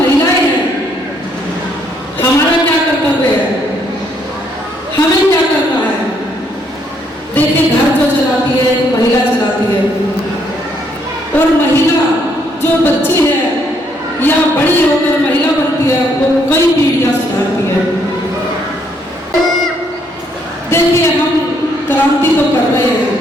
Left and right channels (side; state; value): both; normal; correlation 0.70